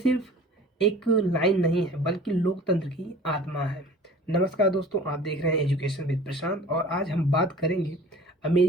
एक लाइन नहीं है बल्कि लोकतंत्र की आत्मा है। नमस्कार दोस्तों, आप देख रहे हैं एजुकेशन विद प्रशांत और आज हम बात करेंगे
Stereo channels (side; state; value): both; normal; correlation 0.44